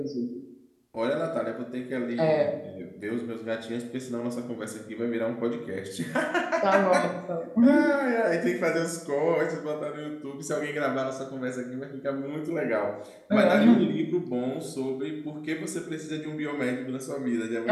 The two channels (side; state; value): both; identical; correlation 1.00